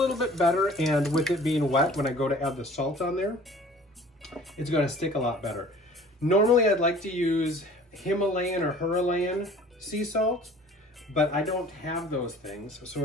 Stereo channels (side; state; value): both; normal; correlation 0.49